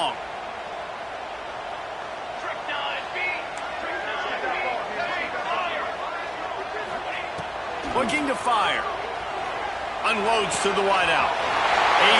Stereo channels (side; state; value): both; identical; correlation 1.00